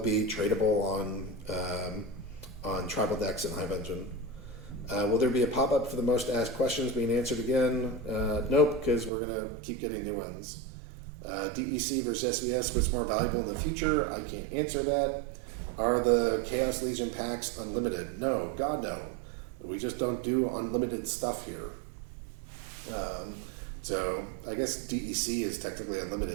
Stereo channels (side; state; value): left; drops out; at 9.1 s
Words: tradable on Tribal Decks and Hive Engine. Will there be a pop-up for the most asked questions being answered again? Nope, because we're going to keep getting new ones. DEC versus SVS, what's more valuable in the future? I can't answer that. Are the Chaos Legion packs unlimited? No, God no. We just don't do unlimited stuff here. So I guess DEC is technically